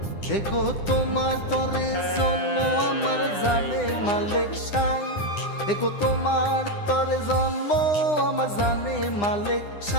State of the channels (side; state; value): right; late; 9.9 ms